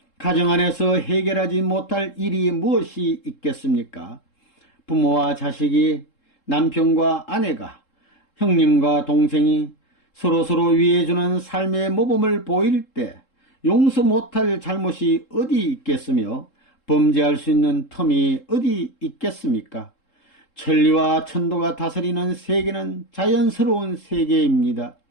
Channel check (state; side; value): late; right; 3.7 ms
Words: 가정 안에서 해결하지 못할 일이 무엇이 있겠습니까? 부모와 자식이, 남편과 아내가, 형님과 동생이 서로서로 위해주는 삶의 모범을 보일 때 용서 못할 잘못이 어디 있겠으며 범죄할 수 있는 텀이 어디 있겠습니까? 천리와 천도가 다스리는 세계는 자연스러운 세계입니다.